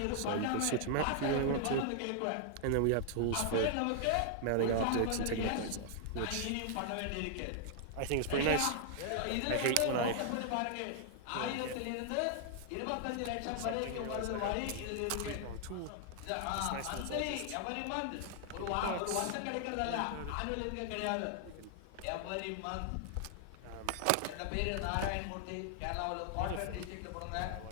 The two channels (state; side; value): different; both; correlation 0.00